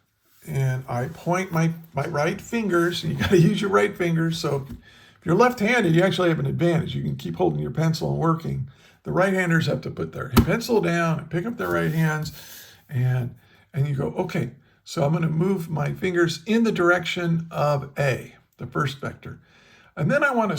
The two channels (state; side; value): identical; both; correlation 1.00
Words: and I point my right fingers, and you got to use your right fingers. So if you're left-handed, you actually have an advantage. You can keep holding your pencil and working. The right-handers have to put their pencil down and pick up their right hands, and you go, okay, so I'm going to move my fingers in the direction of A, the first vector. And then I want to